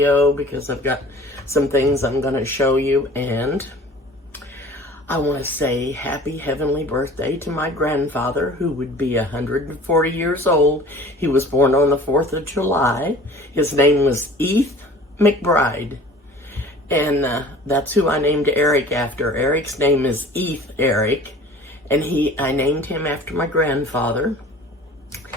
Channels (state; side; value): normal; both; correlation 0.45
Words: because I've got some things I'm going to show you, and I want to say happy heavenly birthday to my grandfather, who would be 140 years old. He was born on the 4th of July. His name was Heath McBride, and that's who I named Eric after. Eric's name is Heath Eric, and I named him after my grandfather.